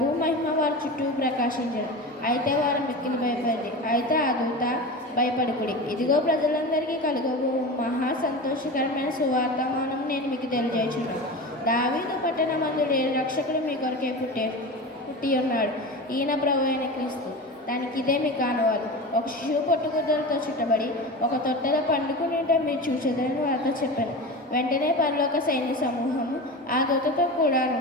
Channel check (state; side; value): normal; both; correlation 0.28